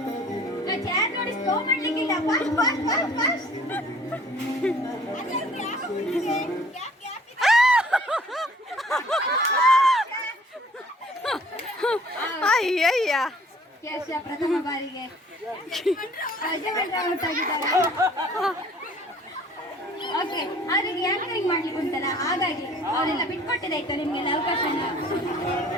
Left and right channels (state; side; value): normal; both; correlation 0.53